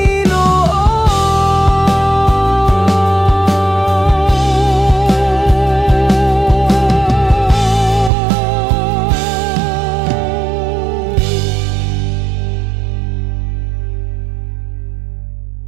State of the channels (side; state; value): left; drops out; at 8.1 s